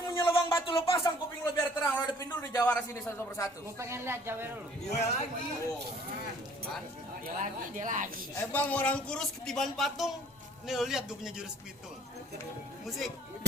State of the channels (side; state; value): both; normal; correlation 0.56